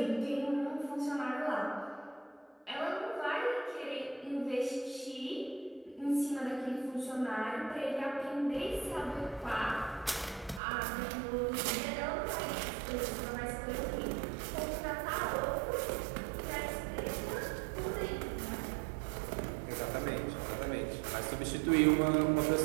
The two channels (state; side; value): drops out; left; at 10.6 s